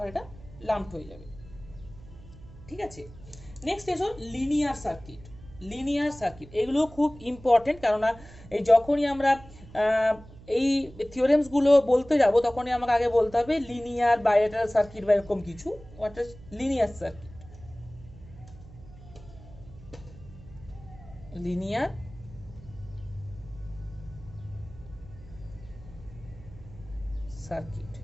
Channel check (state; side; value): noise; right; hum, 19 dB below the sound